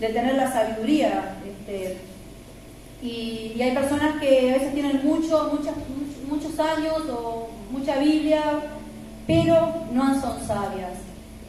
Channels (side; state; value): both; identical; correlation 1.00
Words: tener la sabiduría. Y hay personas que a veces tienen muchos años o mucha Biblia, pero no son sabias.